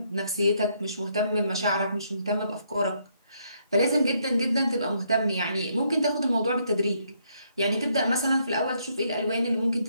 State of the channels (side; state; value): both; inverted; correlation -0.72